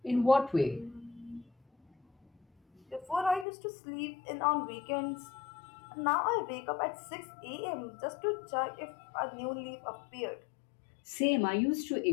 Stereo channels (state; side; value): drops out; right; at 3.5 s